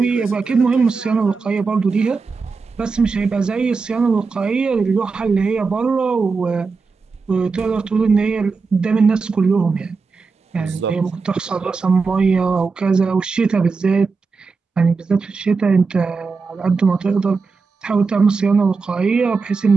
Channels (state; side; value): quieter; left; 4.6 dB